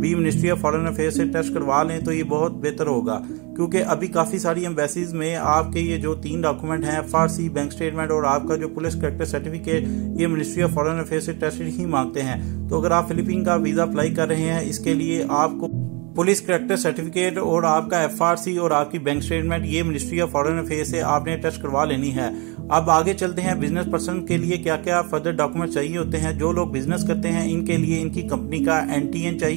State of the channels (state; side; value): quieter; left; 30.4 dB